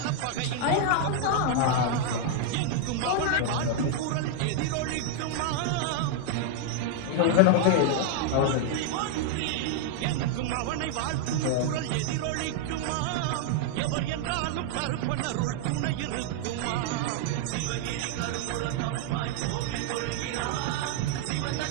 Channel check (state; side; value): different; both; correlation 0.00